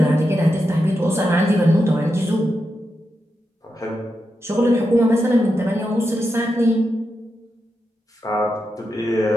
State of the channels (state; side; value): normal; both; correlation 0.87